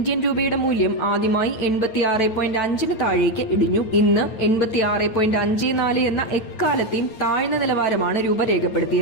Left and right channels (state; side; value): late; right; 9.0 ms